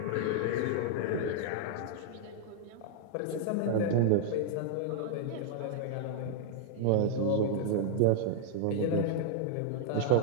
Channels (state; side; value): different; both; correlation 0.00